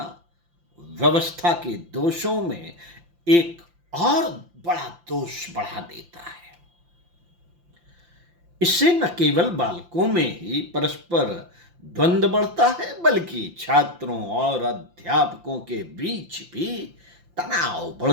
व्यवस्था के दोषों में एक और बड़ा दोष बढ़ा देता है। इससे न केवल बालकों में ही परस्पर द्वंद्व बढ़ता है, बल्कि छात्रों और अध्यापकों के बीच भी तनाव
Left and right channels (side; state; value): left; late; 5.8 ms